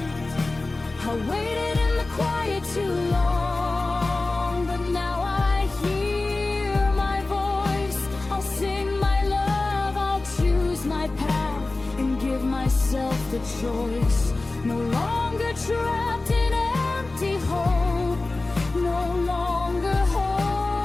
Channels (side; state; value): right; quieter; 3.2 dB